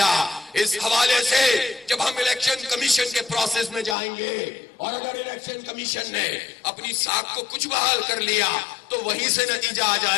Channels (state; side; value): drops out; right; at 4.0 s